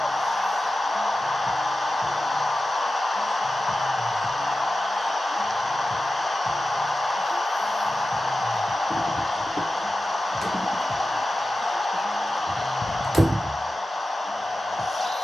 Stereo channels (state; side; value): normal; both; correlation 0.93